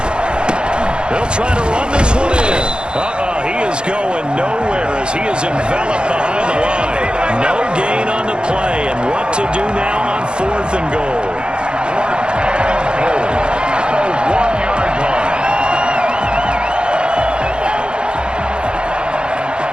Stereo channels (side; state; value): left; late; 0.052 ms